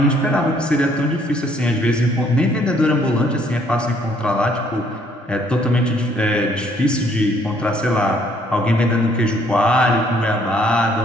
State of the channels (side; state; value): both; normal; correlation 0.64